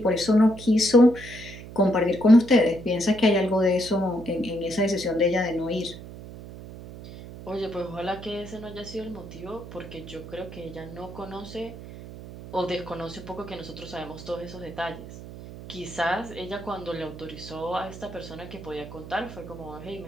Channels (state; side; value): noise; right; hum, 13 dB below the sound